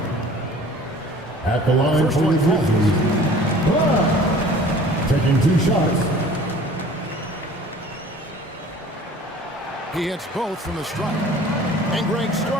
At the line First for the one Grizzlies. Taking 2 shots. He hits both from the stripe. And Greg,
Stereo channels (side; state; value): both; normal; correlation 0.48